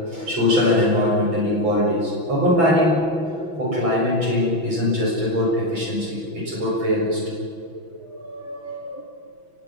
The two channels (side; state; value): left; late; 6.0 ms